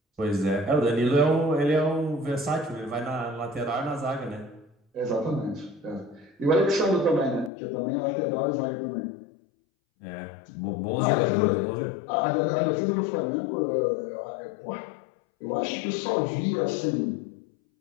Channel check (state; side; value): drops out; right; at 7.5 s